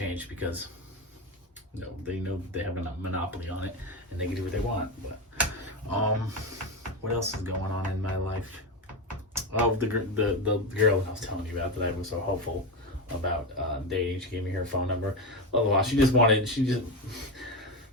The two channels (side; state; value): both; normal; correlation 0.16